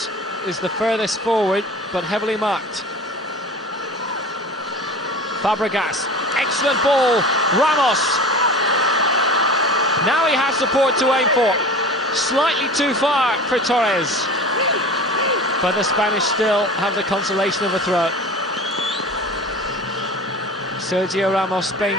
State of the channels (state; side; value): normal; both; correlation 0.36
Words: is the furthest forward, but heavily marked. Fabregas. Excellent ball, Ramos. Now he has support to aim for. Slightly too far for Torres. But the Spanish still have the consolation of a throw. Sergio Ramos,